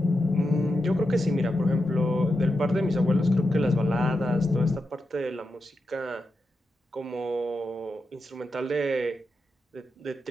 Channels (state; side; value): normal; both; correlation 0.88